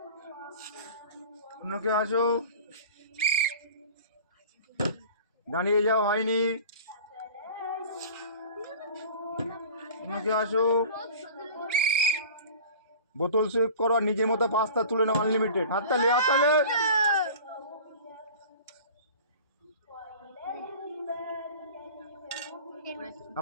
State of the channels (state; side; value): inverted; both; correlation -0.41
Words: অন্য কেউ আসো, দাঁড়িয়ে যাও, হয়নি। অন্য কেউ আসো, বোতল সুইপ করো আর নিজের মতো পাস্তা তুলে নাও আনলিমিটেড। হাততালি হাততালি।